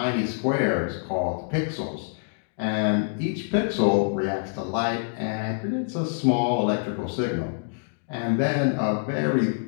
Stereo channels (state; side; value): silent; right; digital silence